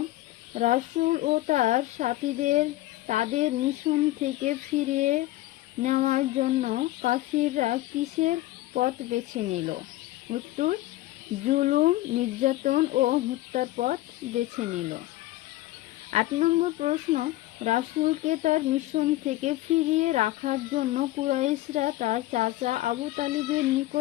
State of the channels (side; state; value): right; quieter; 16.9 dB